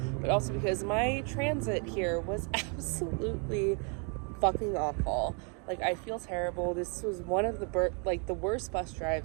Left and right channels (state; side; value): quieter; left; 37.1 dB